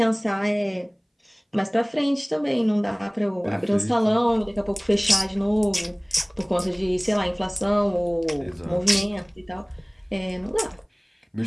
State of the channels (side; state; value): both; identical; correlation 1.00